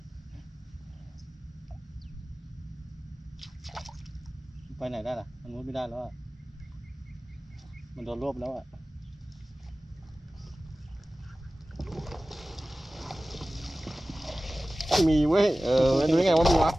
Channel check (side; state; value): both; normal; correlation 0.97